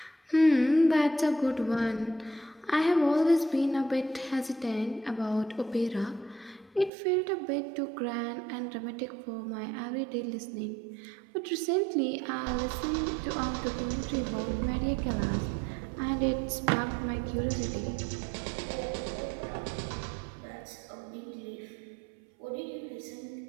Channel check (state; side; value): drops out; left; at 6.9 s